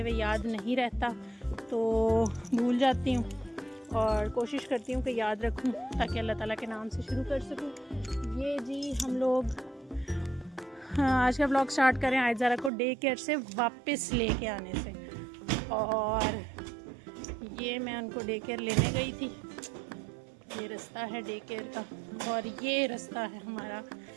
हुए याद नहीं रहता तो भूल जाती हूँ और कोशिश करती हूँ कि याद रखूँ ताकि अल्लाह ताला के नाम से शुरू कर सकूँ। ये जी हम लोग आज का व्लॉग स्टार्ट करें आयज़ारा को डे केयर से वापस लेके आने से। और ये मैं उनको डे केयर लेने गई थी, ये रास्ता है डे केयर का और ये रास्ता है हमारा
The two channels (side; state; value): left; drops out; at 12.7 s